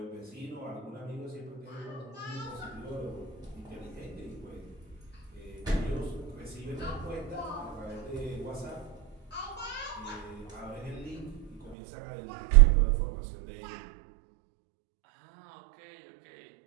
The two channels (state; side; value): drops out; left; at 11.8 s